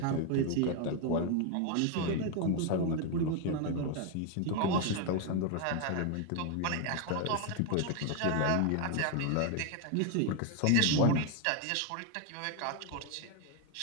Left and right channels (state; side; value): different; both; correlation 0.01